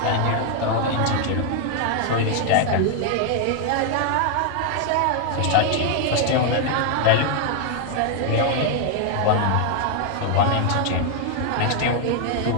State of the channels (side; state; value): both; different; correlation 0.00